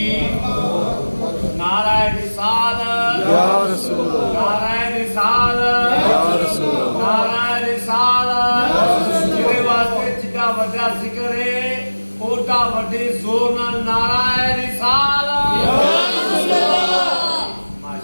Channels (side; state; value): both; inverted; correlation -1.00